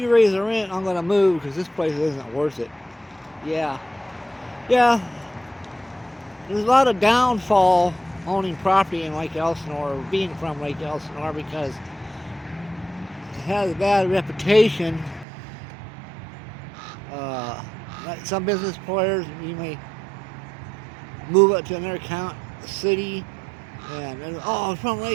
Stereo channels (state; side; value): drops out; left; at 15.2 s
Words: raise the rent, I'm going to move because this place isn't worth it. Yeah. Yeah. There's a lot of downfall owning property in Lake Elsinore, or being from Lake Elsinore, because it has a bad reputation. Like some business players, you may move up to another city, and oh, from